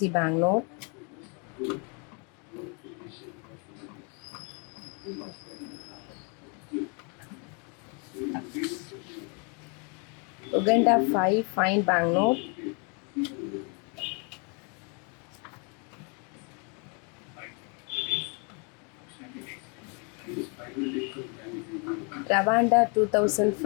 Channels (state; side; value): quieter; right; 35.6 dB